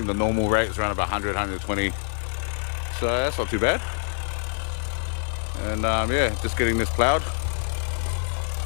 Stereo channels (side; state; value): right; silent; digital silence